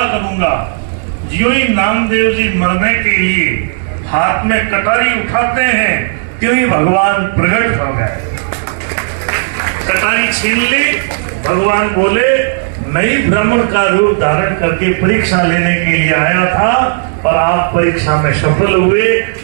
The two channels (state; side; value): silent; left; digital silence